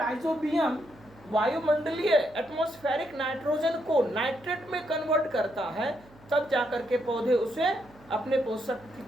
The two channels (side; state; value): right; noise; hum, 25 dB below the sound